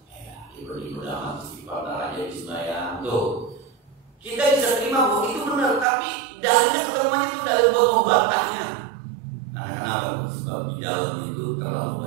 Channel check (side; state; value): left; drops out; at 5.9 s